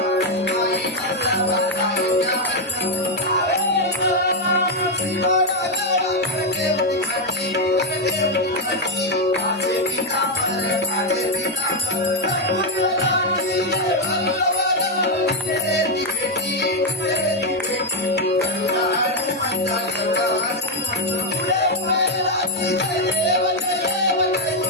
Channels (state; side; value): normal; both; correlation 0.04